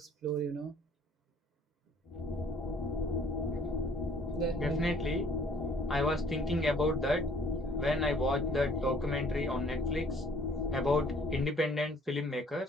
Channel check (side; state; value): both; normal; correlation 0.58